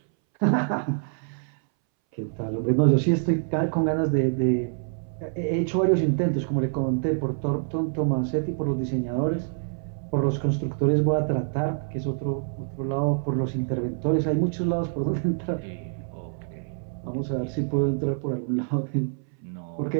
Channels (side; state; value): left; silent; 61 dB below the other